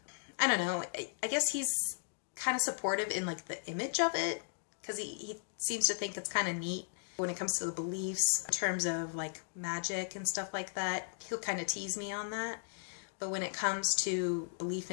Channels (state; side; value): silent; right; digital silence